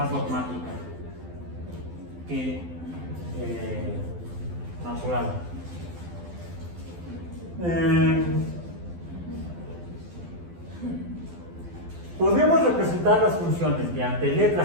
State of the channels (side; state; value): left; late; 12 ms